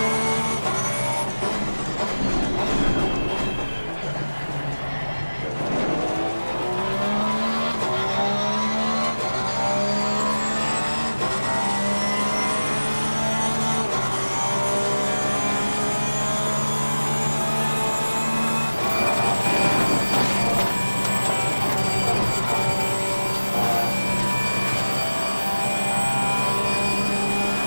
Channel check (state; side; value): inverted; both; correlation -1.00